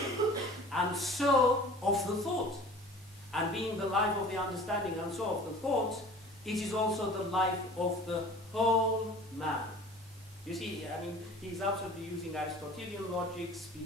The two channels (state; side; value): normal; both; correlation 0.44